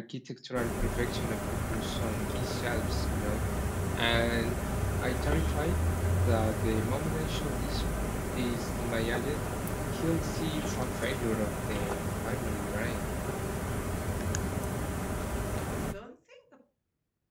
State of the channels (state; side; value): identical; both; correlation 1.00